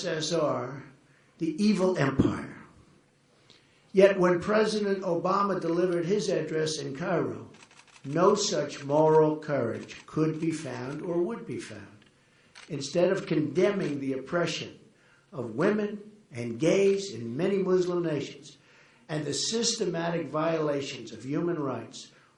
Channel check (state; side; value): identical; both; correlation 1.00